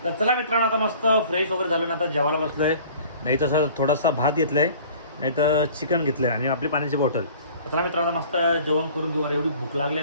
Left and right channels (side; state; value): both; inverted; correlation -0.48